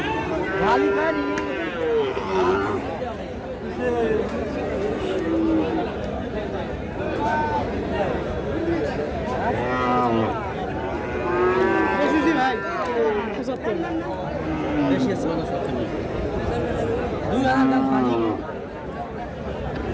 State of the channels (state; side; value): identical; both; correlation 1.00